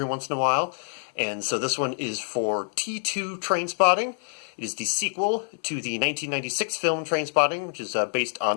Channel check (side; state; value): right; silent; 61 dB below the other